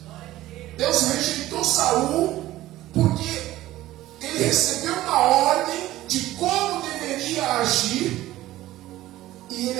Deus rejeitou Saul porque ele recebeu uma ordem de como deveria agir e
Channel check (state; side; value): quieter; left; 15.5 dB